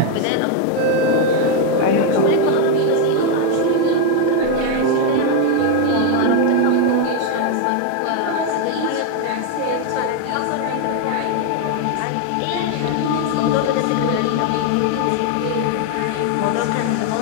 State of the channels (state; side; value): different; both; correlation 0.01